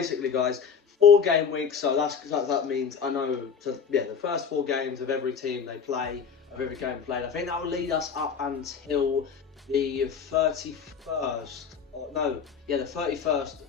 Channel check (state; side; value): quieter; right; 6.5 dB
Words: guys, 4 game weeks. So that means the first 4 games of every team they play. Of every game played. I think that will lead us up until the 31st.